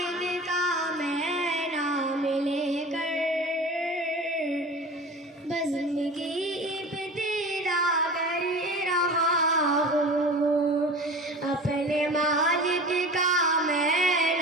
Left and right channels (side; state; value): both; normal; correlation 0.36